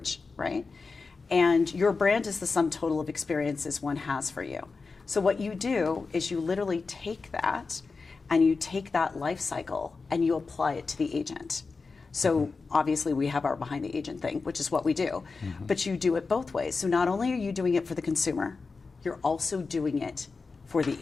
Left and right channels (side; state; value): right; quieter; 4.3 dB